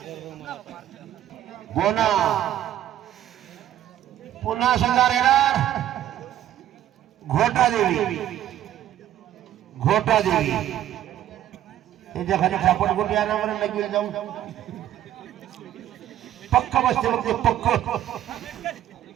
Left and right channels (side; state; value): left; quieter; 12.0 dB